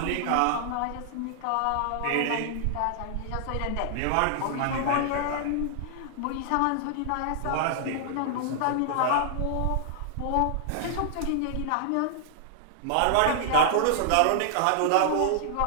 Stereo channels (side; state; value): both; different; correlation -0.01